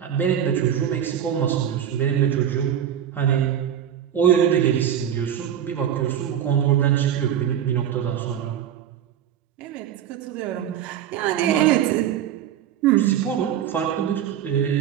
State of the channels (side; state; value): left; quieter; 9.9 dB